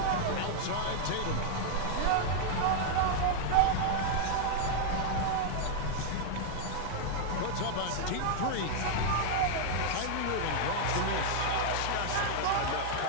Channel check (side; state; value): both; different; correlation -0.01